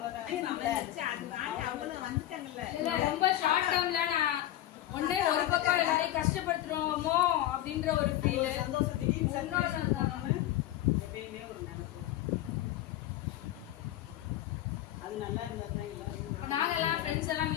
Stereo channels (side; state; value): right; quieter; 13.7 dB